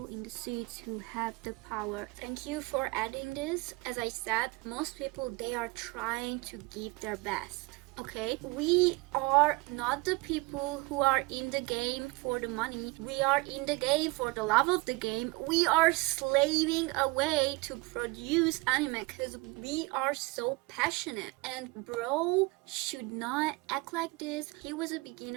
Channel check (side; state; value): left; quieter; 24.7 dB